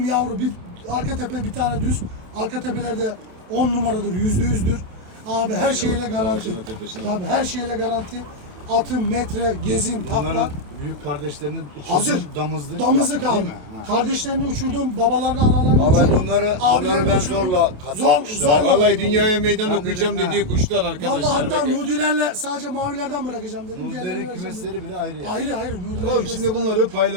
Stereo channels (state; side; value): late; left; 28 ms